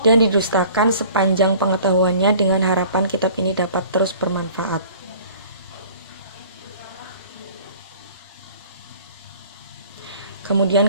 dan didustakan sepanjang pengetahuannya, dengan harapan kitab ini dapat terus bermanfaat.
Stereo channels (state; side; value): inverted; both; correlation -0.48